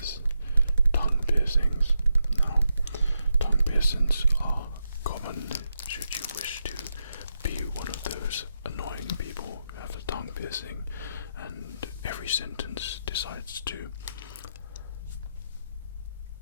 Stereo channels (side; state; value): both; inverted; correlation -0.85